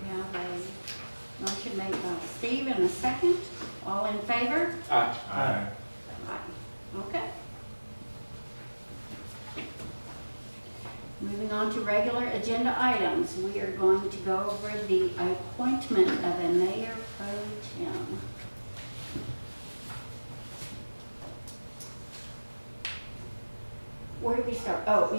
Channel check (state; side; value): inverted; both; correlation -1.00